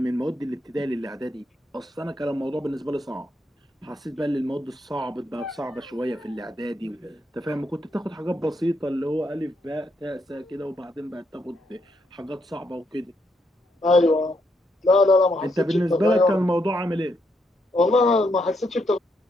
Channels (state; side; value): normal; both; correlation 0.78